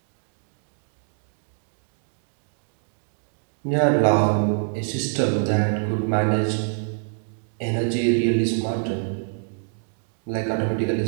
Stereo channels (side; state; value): left; silent; digital silence